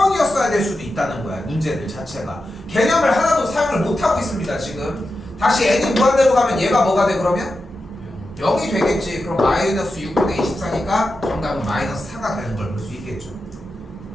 될 수도 있다는 거야 문제들 자체가. 개념을 하나도 사용을 못하고 있습니다 지금. 다시 n이 무한대로 가면 얘가 뭐가 돼 그러면? 0이 되겠지. 그럼 마이너스 6분의 24니까 정답은 마이너스 4가 되는 걸 볼 수 있겠죠.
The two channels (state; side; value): normal; both; correlation 0.90